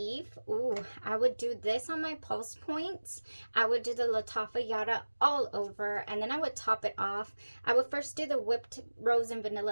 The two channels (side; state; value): both; inverted; correlation -1.00